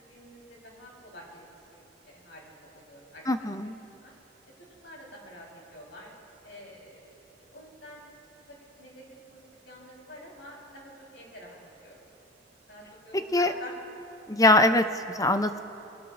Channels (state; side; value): normal; both; correlation 0.33